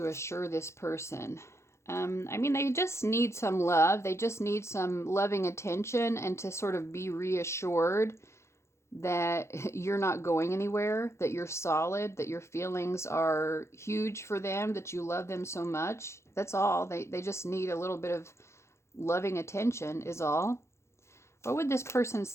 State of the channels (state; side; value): late; right; 0.13 ms